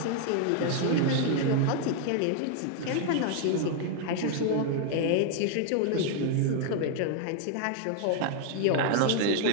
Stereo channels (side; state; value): both; different; correlation 0.00